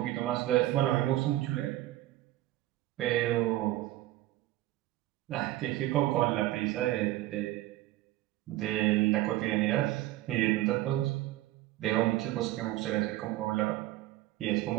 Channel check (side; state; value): left; quieter; 15.9 dB